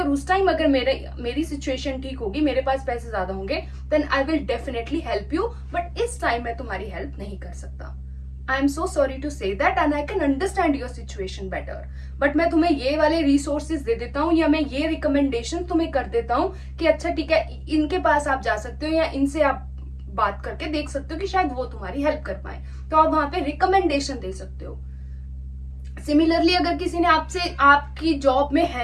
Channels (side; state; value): both; identical; correlation 1.00